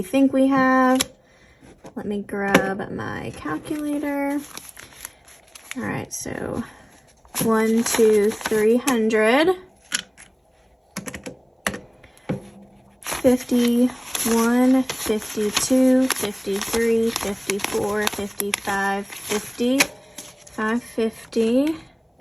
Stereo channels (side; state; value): both; identical; correlation 1.00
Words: think we have. Let me grab my calculator. All right, so 1, 2, 300. 51, 52, 53, 54, 55, 50, 550,